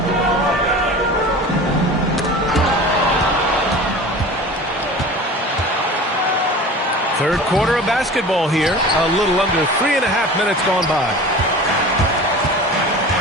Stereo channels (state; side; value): normal; both; correlation 0.37